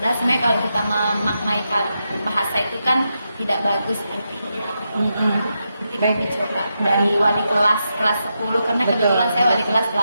sebenarnya kalau kita memaknai bahasa itu kan tidak bagus artinya. Jadi kami coba dari wali kelas 10, karena kebetulan saya wali kelas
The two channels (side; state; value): both; inverted; correlation -0.85